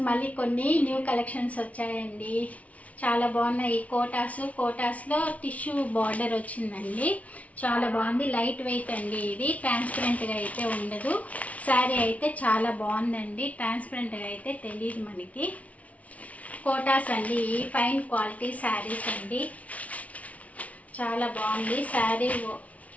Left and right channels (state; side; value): late; right; 0.068 ms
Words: మళ్ళీ కొన్ని న్యూ కలెక్షన్స్ వచ్చాయండి. చాలా బాగున్నాయి. కోటాస్లో టిష్యూ బార్డర్ వచ్చిందండి. చాలా బాగుంది. లైట్ వెయిట్ అండి. ఇది ట్రాన్స్పరెంట్గా అయితే ఉండదు. శారీ అయితే చాలా బాగుందండి. ట్రాన్స్పరెంట్గా అయితే తెలియదు మనకి. కోటాస్ అండి. ఫైన్ క్వాలిటీ శారీస్ అండి. చాలా బాగుంది శారీ.